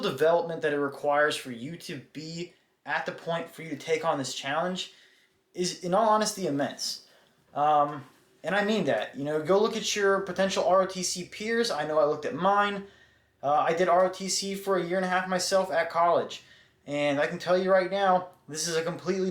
that it requires for you to be at the point for you to take on this challenge is, in all honesty, immense. And I mean that. Go look at your potential ROTC peers. I know I looked at mine. I did ROTC for a year and a half myself at college. And I can tell you right now, this is a completely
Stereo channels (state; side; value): identical; both; correlation 1.00